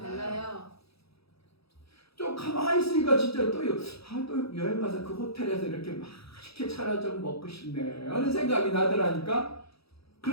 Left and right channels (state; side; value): late; right; 0.77 ms